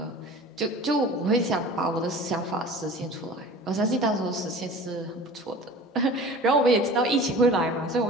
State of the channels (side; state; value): both; normal; correlation 0.41